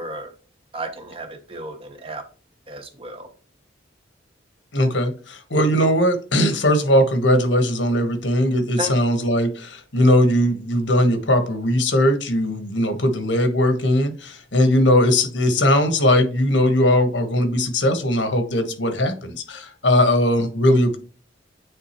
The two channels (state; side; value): normal; both; correlation 0.43